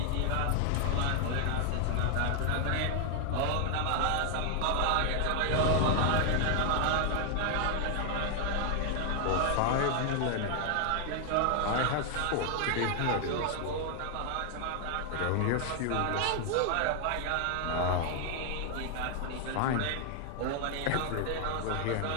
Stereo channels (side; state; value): both; different; correlation 0.00